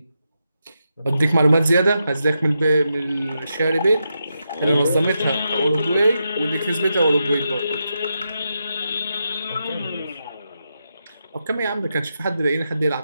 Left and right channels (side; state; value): both; inverted; correlation -0.86